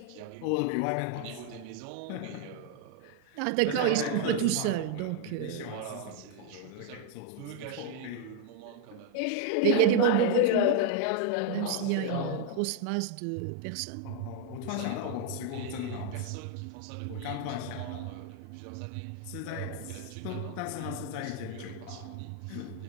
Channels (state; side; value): different; both; correlation 0.00